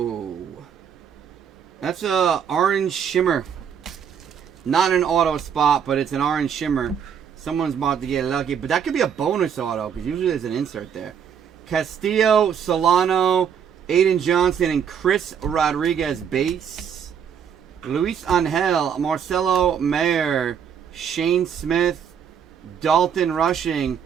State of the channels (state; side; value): quieter; left; 7.9 dB